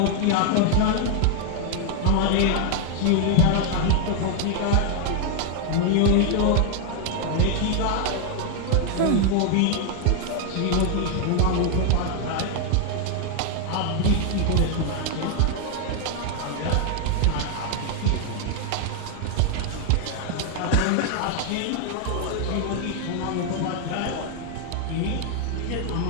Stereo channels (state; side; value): different; both; correlation 0.00